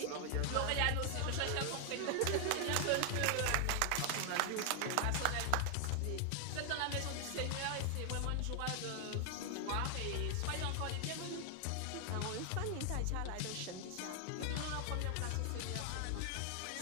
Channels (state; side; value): different; both; correlation 0.00